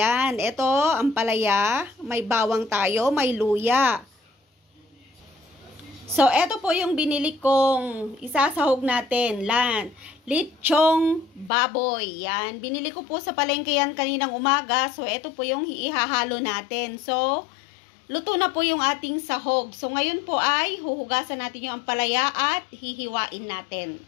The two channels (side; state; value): right; drops out; at 11.5 s